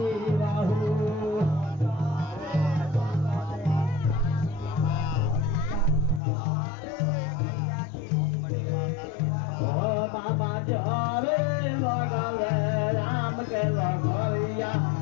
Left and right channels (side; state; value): right; drops out; at 6.2 s